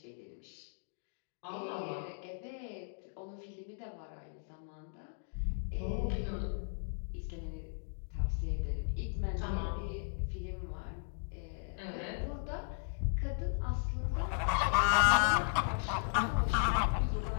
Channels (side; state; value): right; silent; digital silence